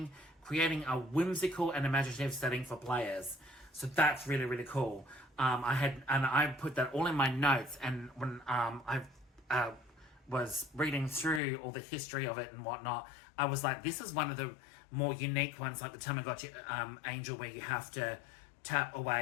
creating a whimsical and imaginative setting for players. So that's really, really cool. I put that all in my notes, and when I was reading through all the history of it and whatnot, I was like, this is one of the more unique ones, like the Tamagotchi Angel, where you have to tap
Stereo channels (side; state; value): right; drops out; at 11.4 s